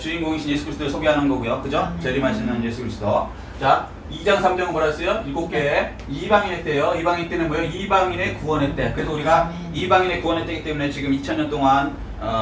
예수 그리스도를 소개하는 거고요. 그죠? 재림하시는 예수 그리스도. 자, 2장 3장은 뭐라 했어요? 7개 이방인의 때요. 이방인 때는 뭐예요? 이방인의 구원의 때. 그래서 우리가 이방인의 구원의 때이기 때문에 지금 2000년 동안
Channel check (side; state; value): both; identical; correlation 1.00